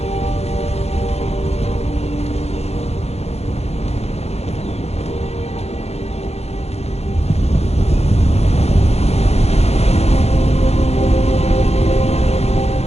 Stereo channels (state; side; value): late; right; 0.31 ms